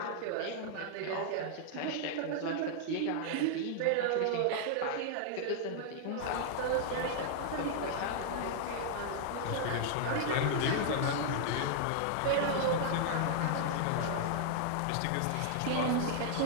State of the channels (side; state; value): both; different; correlation -0.01